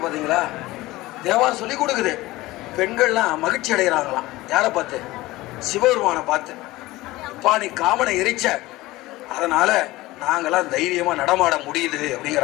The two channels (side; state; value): right; quieter; 18.8 dB